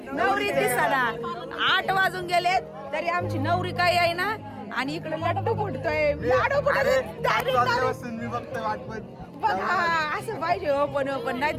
नवरी दिसाना 8 वाजून गेलेत तरी आमची नवरी काय आहे ना. आणि इकडे लड्डू फुटतोय, लाडू बघा असं पाहिजे. ओपन नाही तर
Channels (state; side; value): identical; both; correlation 1.00